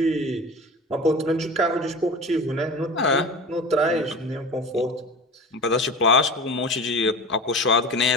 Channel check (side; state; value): both; normal; correlation 0.33